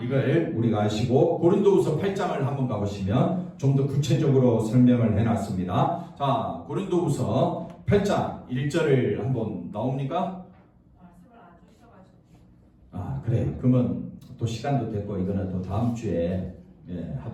이걸 우리가 아시고 고린도후서 8장을 한번 가보시면 좀 더 구체적으로 설명을 해놨습니다. 자, 고린도후서 8장 1절을 한번 나옵니까? 그래요. 그러면 또 시간도 됐고 이거는 또 다음 주에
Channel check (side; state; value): both; identical; correlation 1.00